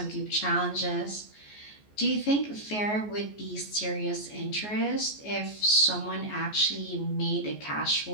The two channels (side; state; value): right; late; 14 ms